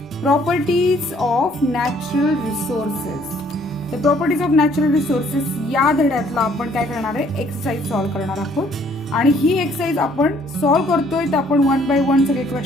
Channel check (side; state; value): both; normal; correlation 0.62